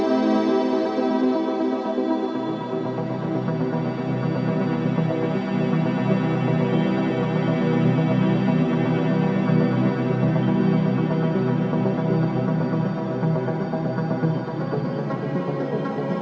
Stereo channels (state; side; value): identical; both; correlation 1.00